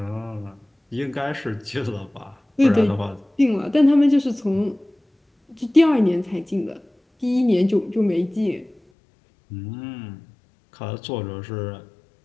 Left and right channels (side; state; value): right; drops out; at 8.8 s